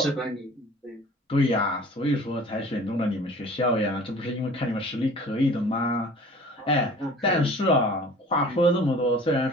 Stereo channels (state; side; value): normal; both; correlation 0.46